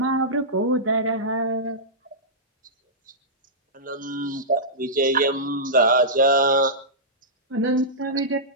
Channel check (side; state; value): both; normal; correlation -0.15